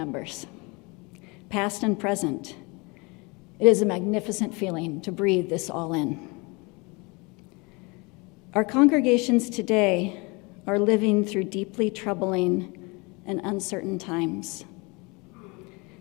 past and present. It is a magnificent feeling to breathe this all in. Our congregations today are living through deeply troubling and uncertain times.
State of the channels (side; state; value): right; quieter; 27.6 dB